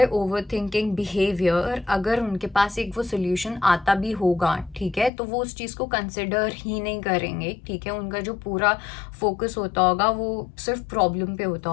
over thinking behaviour, अगर उनके पास एक वो सोल्यूशन आता भी होगा, ठीक है, तो वो उस चीज़ को कंसिडर ही नहीं करेंगे, ठीक है। उनका जो पूरा फोकस होता होगा वो सिर्फ प्रॉब्लम पे होता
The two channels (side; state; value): right; drops out; at 5.1 s